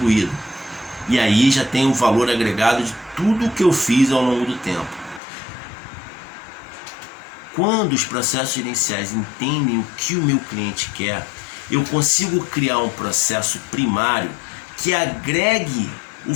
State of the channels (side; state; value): right; drops out; at 5.2 s